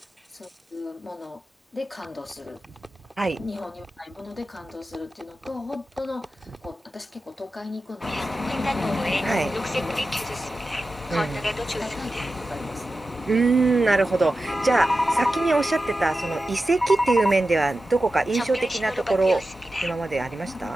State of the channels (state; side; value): normal; both; correlation 0.93